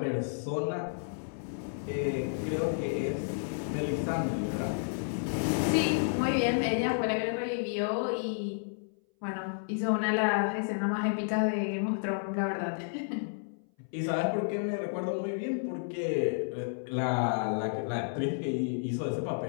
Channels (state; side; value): silent; right; 57 dB below the other